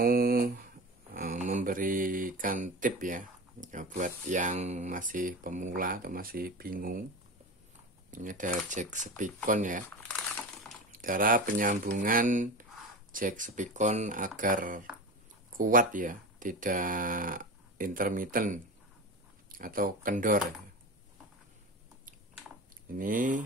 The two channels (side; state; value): both; normal; correlation 0.28